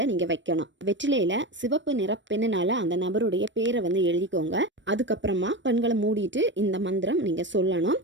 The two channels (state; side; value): late; left; 0.54 ms